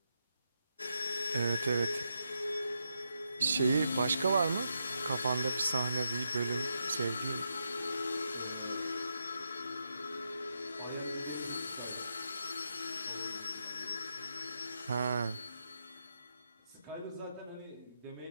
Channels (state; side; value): inverted; both; correlation -0.83